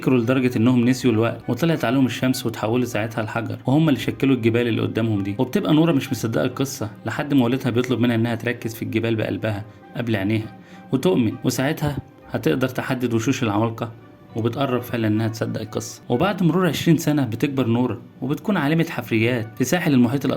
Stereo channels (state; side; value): identical; both; correlation 1.00